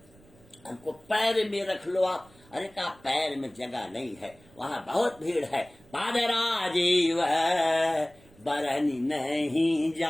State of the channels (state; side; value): noise; right; rumble, 27 dB below the sound